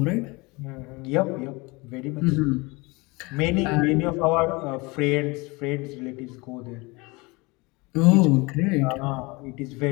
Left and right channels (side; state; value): right; quieter; 25.4 dB